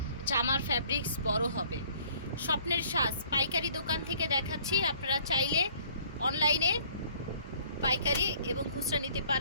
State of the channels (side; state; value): both; inverted; correlation -0.57